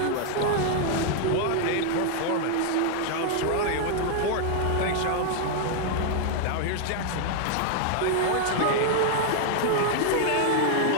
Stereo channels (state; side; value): different; both; correlation 0.00